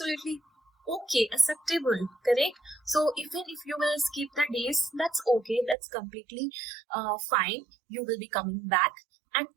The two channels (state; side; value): drops out; left; at 5.8 s